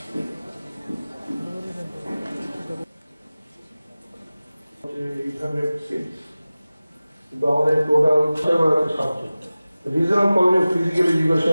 কিন্তু আমাদের total subject regional college of physical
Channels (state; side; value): inverted; both; correlation -0.97